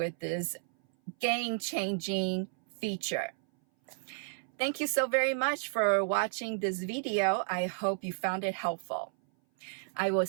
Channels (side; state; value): left; silent; 56 dB below the other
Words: this game-changing feature. Thank you so very much for watching this video. I hope you found it helpful. I will